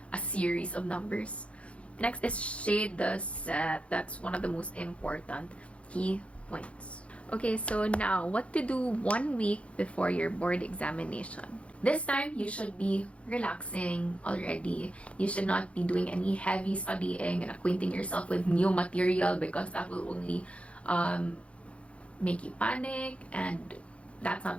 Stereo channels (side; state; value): right; late; 0.062 ms